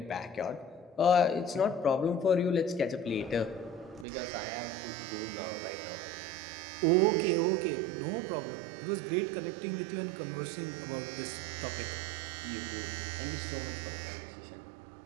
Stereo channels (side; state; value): left; drops out; at 4.0 s